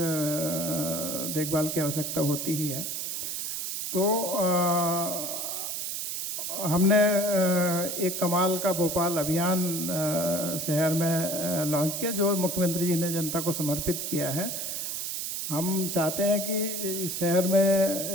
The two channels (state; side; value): noise; right; hiss, 3 dB below the sound